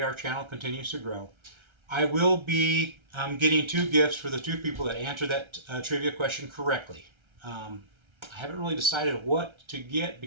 our channel continues to grow. I will be getting 2 gifts for the 2 people that answer that trivia question correctly. I haven't really decided what to get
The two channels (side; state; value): left; late; 1.3 ms